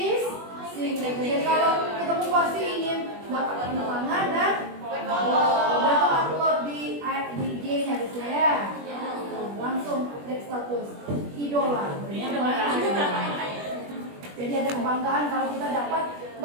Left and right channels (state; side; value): late; left; 21 ms